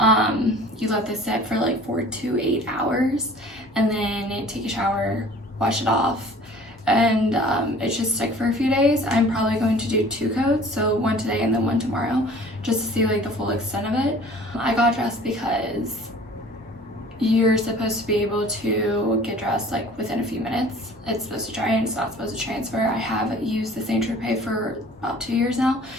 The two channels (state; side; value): normal; both; correlation 0.48